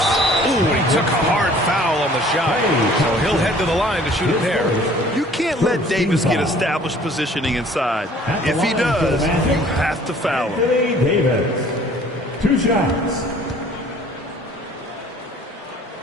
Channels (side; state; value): both; normal; correlation 0.53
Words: he took a hard foul on the shot. So he'll head to the line to shoot a pair. You can't let Davis get established positioning inside. If he does, you have to foul him. Davis. 2 shots.